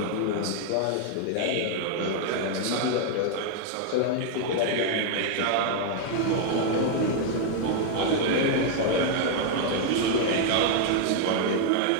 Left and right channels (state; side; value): different; both; correlation 0.00